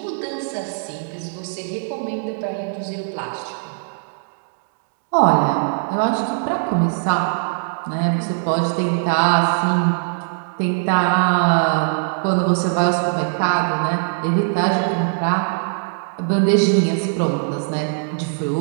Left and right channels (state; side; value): silent; left; digital silence